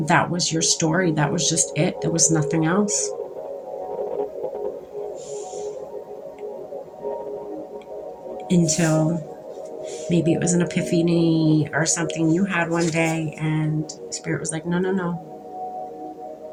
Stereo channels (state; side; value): identical; both; correlation 1.00